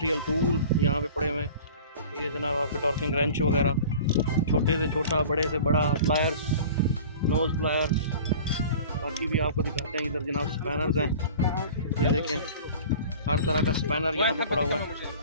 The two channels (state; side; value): inverted; both; correlation -0.42